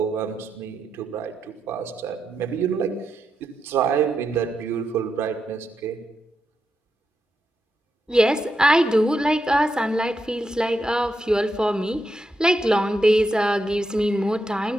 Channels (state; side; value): normal; both; correlation 0.85